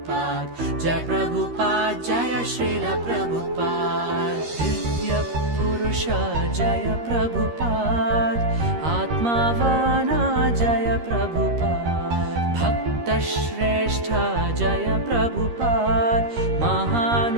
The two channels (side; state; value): left; late; 13 ms